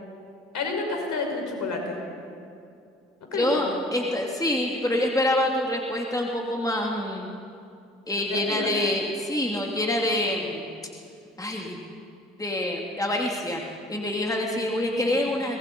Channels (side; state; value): both; normal; correlation 0.50